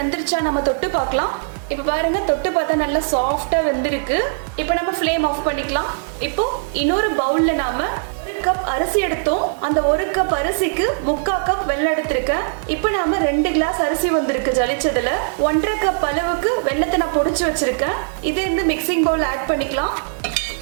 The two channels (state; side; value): silent; left; digital silence